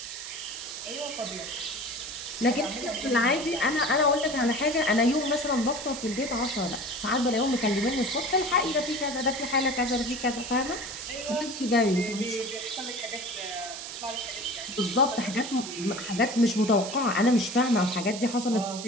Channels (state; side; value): noise; right; hiss, 9 dB below the sound